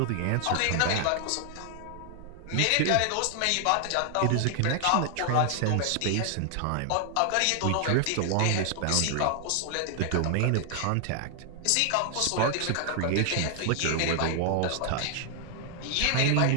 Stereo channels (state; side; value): different; both; correlation 0.00